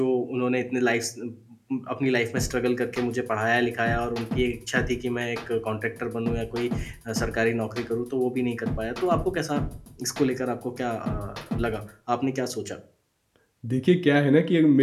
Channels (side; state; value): both; identical; correlation 1.00